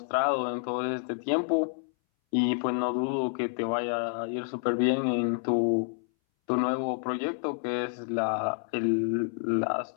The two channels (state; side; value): silent; right; 59 dB below the other